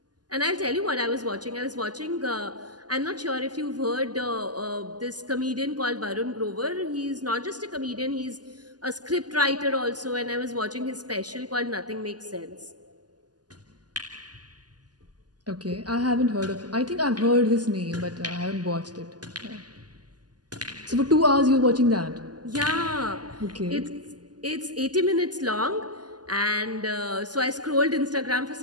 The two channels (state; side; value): late; left; 0.69 ms